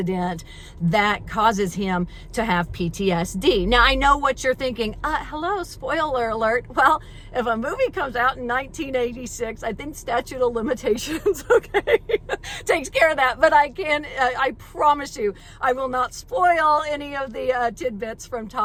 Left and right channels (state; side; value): identical; both; correlation 1.00